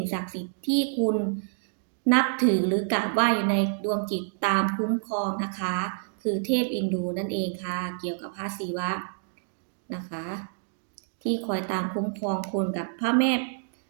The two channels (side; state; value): left; silent; digital silence